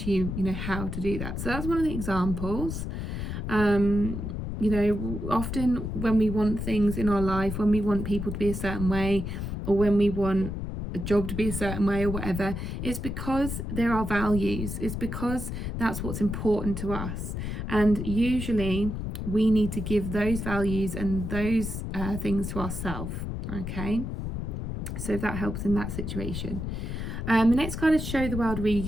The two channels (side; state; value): left; noise; rumble, 4 dB below the sound